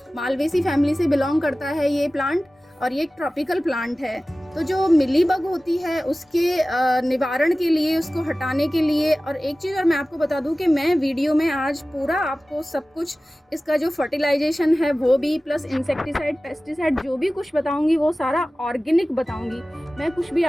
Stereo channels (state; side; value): normal; both; correlation 0.97